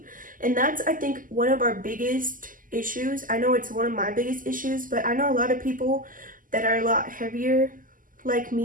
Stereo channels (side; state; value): left; late; 0.40 ms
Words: And that's, I think, one of our biggest issues. I know it's one of my biggest issues, but I know a lot of people that are a lot heavier like